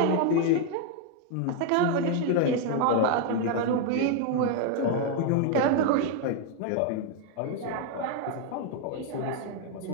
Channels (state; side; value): different; both; correlation 0.01